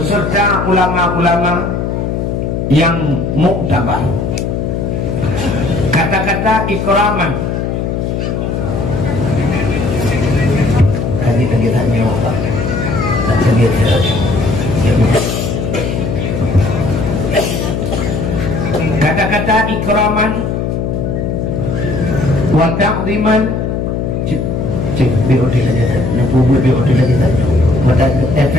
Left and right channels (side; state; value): left; noise; hum, 1 dB below the sound